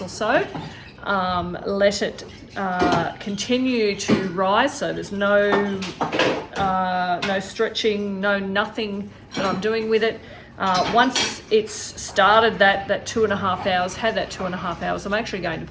or so. Let it continue to rise, so there's no stretching, nothing that I'm doing with it. Once it's started that 2.5 hours, had that 2.5 hours, I'm actually going to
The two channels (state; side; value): identical; both; correlation 1.00